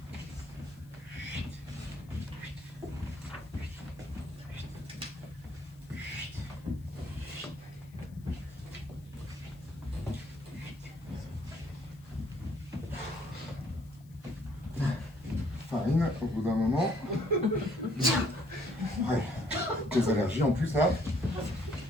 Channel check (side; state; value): left; noise; hiss, 29 dB below the sound